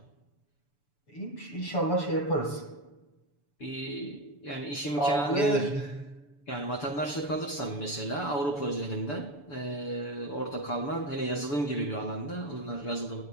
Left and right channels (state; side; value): late; right; 6.9 ms